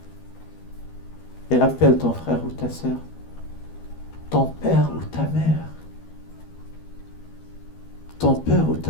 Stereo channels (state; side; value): late; right; 12 ms